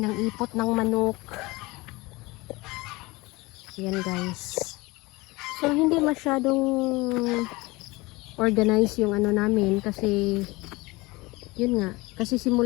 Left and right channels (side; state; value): right; quieter; 22.6 dB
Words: ipot ng manok. Yan guys. So hindi masyadong organize yung namin kasi yun nga, kasi